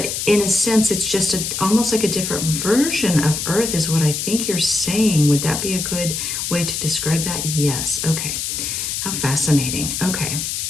in a sense, it's just almost like a different version of Earth is what I think you're saying. Would that be a good way to describe that? Yes. Okay. How fascinating. Okay.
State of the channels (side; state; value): left; noise; hiss, 3 dB below the sound